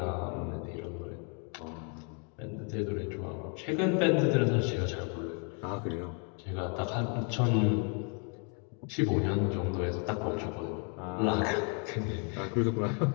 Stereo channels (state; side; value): quieter; right; 39.2 dB